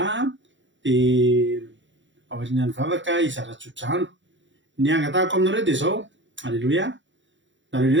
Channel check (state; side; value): late; left; 0.54 ms